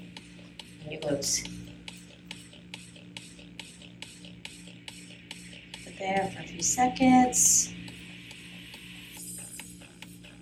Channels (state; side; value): identical; both; correlation 1.00